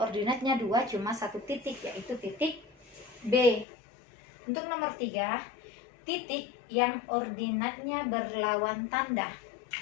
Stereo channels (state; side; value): drops out; right; at 3.7 s